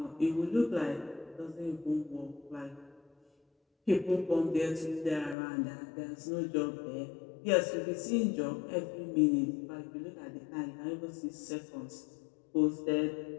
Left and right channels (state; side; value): drops out; right; at 5.4 s